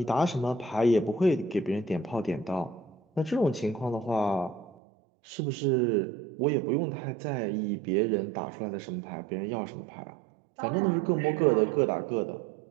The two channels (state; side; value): drops out; left; at 4.7 s